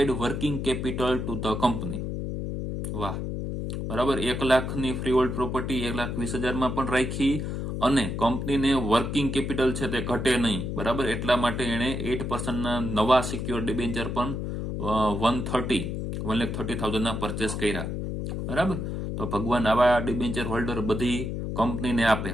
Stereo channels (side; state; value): left; noise; hum, 3 dB below the sound